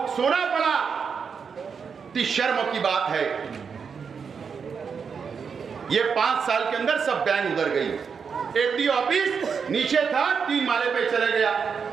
सोना पड़ा। इतनी शर्म की बात है। ये 5 साल के अंदर सब बैंक उधर गई। एफडी ऑफिस नीचे था, 3 माले पे चले गया।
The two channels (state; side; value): quieter; left; 6.1 dB